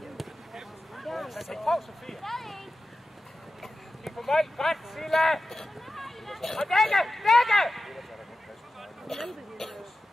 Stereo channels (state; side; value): normal; both; correlation 0.93